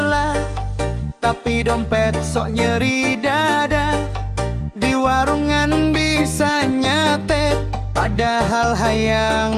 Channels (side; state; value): both; identical; correlation 1.00